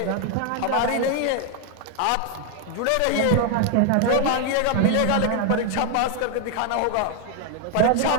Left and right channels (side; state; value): both; different; correlation 0.01